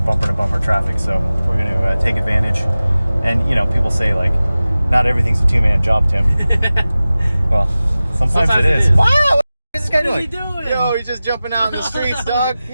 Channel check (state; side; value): inverted; both; correlation -0.97